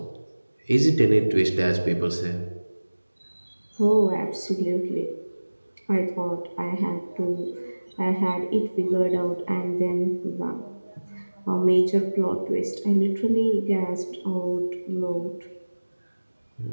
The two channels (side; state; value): both; inverted; correlation -1.00